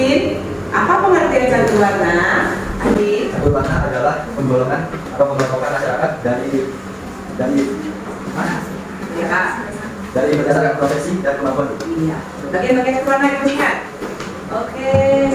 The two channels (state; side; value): identical; both; correlation 1.00